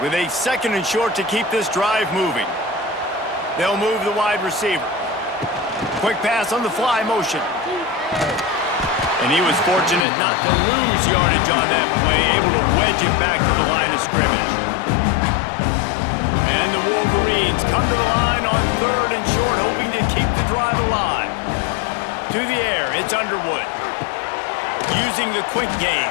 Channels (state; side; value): drops out; right; at 10.1 s